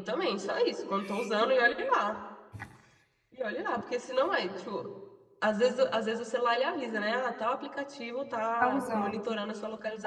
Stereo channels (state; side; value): identical; both; correlation 1.00